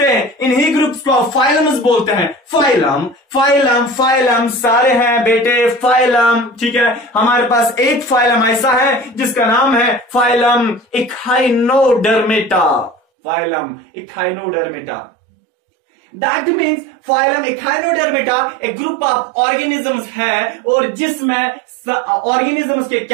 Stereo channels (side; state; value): left; drops out; at 13.0 s